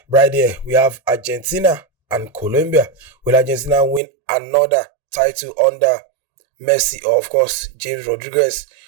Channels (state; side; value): drops out; left; at 4.0 s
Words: right there, we have Argentina and Colombia. Will Argentina win another title under Messi, or of course James Rodriguez,